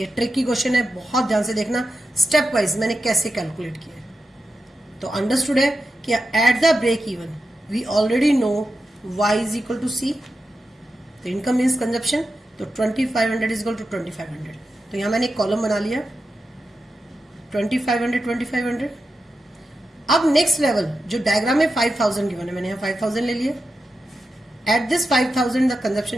ट्रिकी क्वेश्चन है, बहुत ध्यान से देखना. स्टेप वाइज मैंने कैसे कैलकुलेट किया है. तो अंडरस्टूड है कि at the break even we already know y is equal to C. तो इनकम मीन्स कंजप्शन, तो 2500 इज इक्वल टू 2500. तो यहां मैंने एक कॉलम बना लिया 2500 2500. अब नेक्स्ट लेवल जो डायग्राम में 5000 गिवन है, मैंने यहां 5000 ले लिया. At this 5000 the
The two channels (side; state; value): both; normal; correlation 0.89